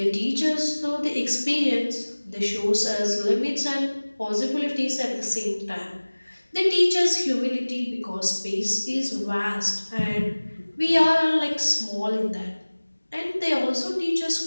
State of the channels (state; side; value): inverted; both; correlation -1.00